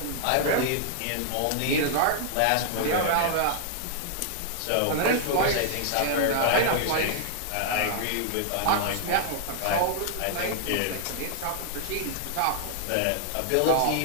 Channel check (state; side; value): different; both; correlation -0.01